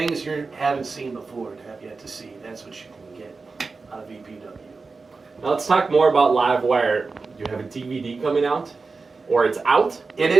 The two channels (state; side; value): quieter; left; 4.2 dB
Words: you haven't seen before and have yet to see. That's what you can get out of EPW. Now let's talk more about Livewire. Do you have a DVD coming out? Or it's out? It